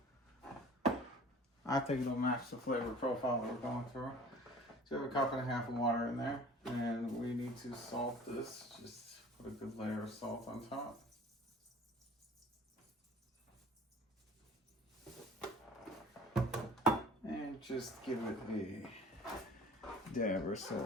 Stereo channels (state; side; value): normal; both; correlation 0.45